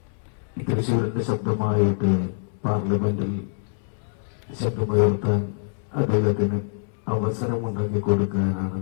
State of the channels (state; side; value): silent; right; digital silence